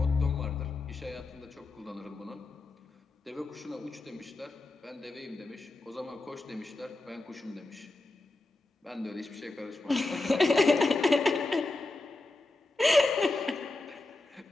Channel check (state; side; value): quieter; right; 3.0 dB